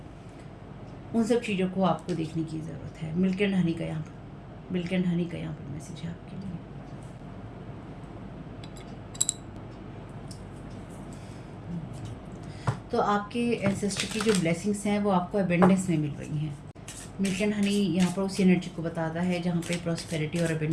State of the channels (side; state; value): both; identical; correlation 1.00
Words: उन सब चीज़ों को आपको देखने की ज़रूरत है। मिल्क एंड हनी का यहाँ पर मैसेज है आपके लिए। तो आपके एंसेस्टर की जो ब्लेसिंग्स हैं वो आपको अबेंडेंस में मिल रही हैं। मिल्क एंड हनी यहाँ पर उस एनर्जी को बताता है जहाँ पे प्रॉस्पेरिटी और